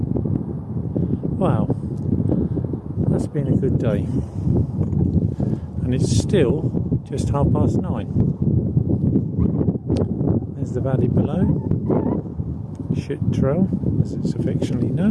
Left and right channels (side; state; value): both; identical; correlation 1.00